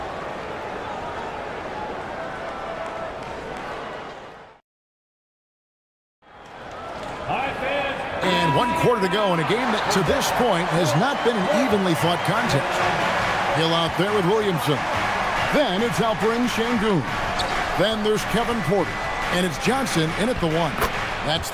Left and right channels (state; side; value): identical; both; correlation 1.00